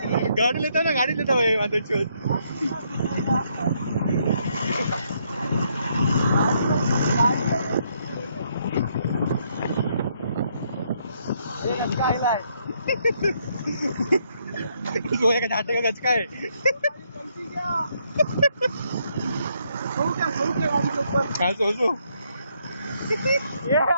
गाडी लेता ना गाडी लेता माझं शोध गोया का झाटे का गचका है हाँ सोचो ये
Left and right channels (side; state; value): both; inverted; correlation -0.73